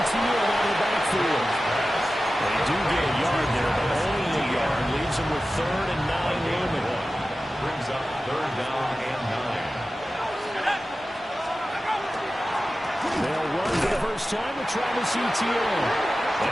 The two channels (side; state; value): both; normal; correlation 0.94